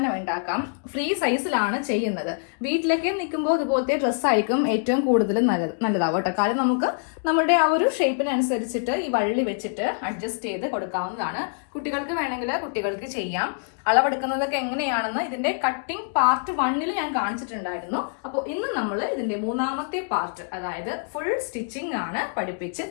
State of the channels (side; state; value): right; silent; digital silence